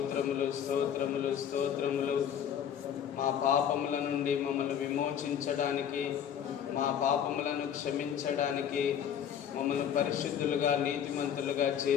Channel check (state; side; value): quieter; right; 8.9 dB